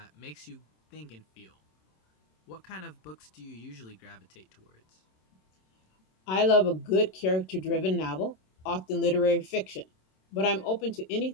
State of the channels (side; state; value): right; late; 27 ms